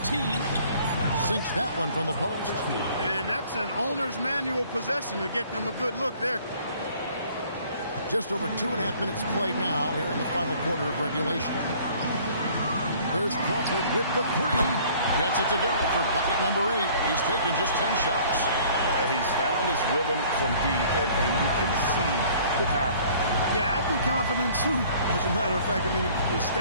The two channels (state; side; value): inverted; both; correlation -0.54